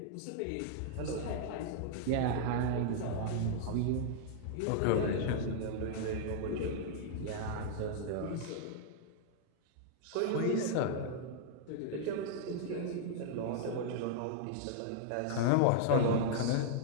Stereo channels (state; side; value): different; both; correlation -0.01